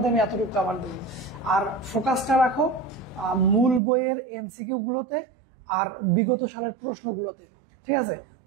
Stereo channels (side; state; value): left; drops out; at 3.8 s